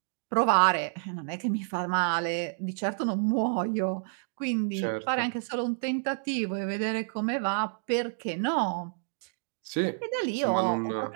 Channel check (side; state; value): left; silent; digital silence